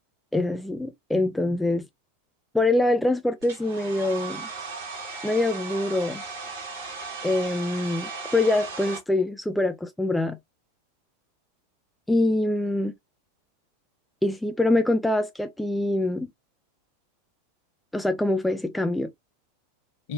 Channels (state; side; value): normal; both; correlation 0.83